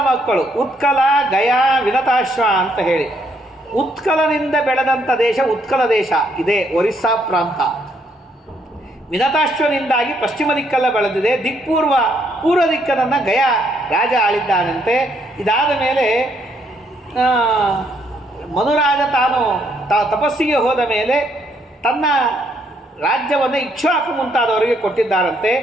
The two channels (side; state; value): both; normal; correlation 0.71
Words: ಮಕ್ಕಳು, ಉತ್ಕಲ, ಗಯಾ, ವಿನತಾಶ್ವ ಅಂತ ಹೇಳಿ. ಉತ್ಕಲನಿಂದ ಬೆಳೆದಂಥ ದೇಶ ಉತ್ಕಲ ದೇಶ ಇದೆ, ಒರಿಸ್ಸಾ ಪ್ರಾಂತ. ವಿನತಾಶ್ವನಿಂದಾಗಿ ಪಶ್ಚಿಮ ದಿಕ್ಕೆಲ್ಲ ಬೆಳೆದಿದೆ. ಪೂರ್ವ ದಿಕ್ಕನ್ನು ಗಯಾ ರಾಜ ಆಳಿದ್ದಾನಂತೆ. ಇದಾದ ಮೇಲೆ ಮನುರಾಜ ತಾನು ತಪಸ್ಸಿಗೆ ಹೋದ ಮೇಲೆ ತನ್ನ ರಾಜ್ಯವನ್ನು ಇಕ್ಷ್ವಾಕು ಮುಂತಾದವರಿಗೆ ಕೊಟ್ಟಿದ್ದಾರಂತೆ.